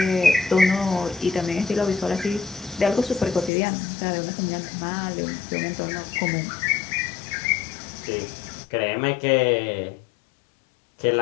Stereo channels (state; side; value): drops out; right; at 3.5 s